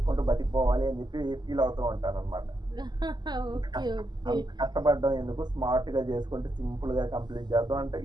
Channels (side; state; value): left; late; 0.21 ms